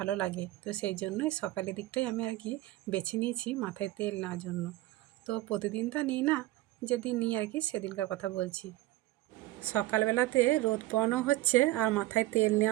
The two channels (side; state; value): left; quieter; 17.2 dB